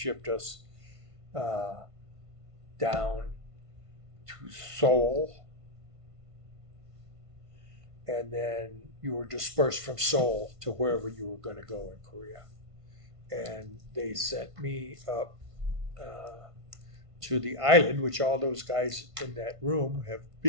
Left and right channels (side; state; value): left; late; 1.5 ms